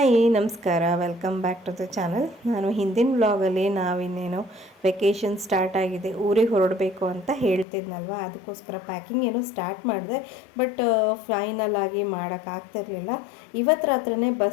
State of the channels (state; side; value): drops out; right; at 7.7 s